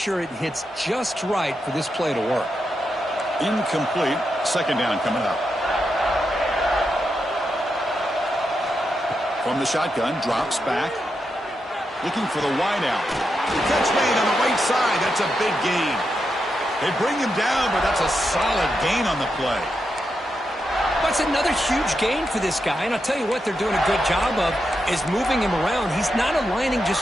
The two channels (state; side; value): normal; both; correlation 0.86